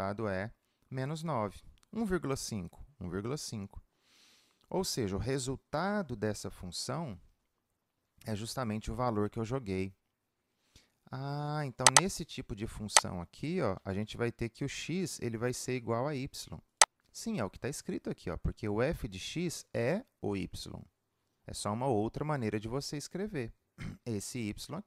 é menos 9. 1,5, 1,5. Ou seja, o resultado dessa função é justamente o valor que eu joguei. Ah, então nesse tipo de função aqui, ó, a gente vai ter que o x ele vai ser igual a y. Sim, é o que está escrito aqui, ó, porque o f de x é o y. É só uma outra maneira de você escrever esse y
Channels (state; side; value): identical; both; correlation 1.00